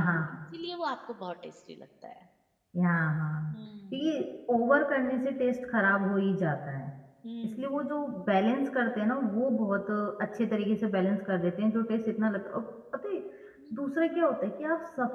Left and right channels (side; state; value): both; identical; correlation 1.00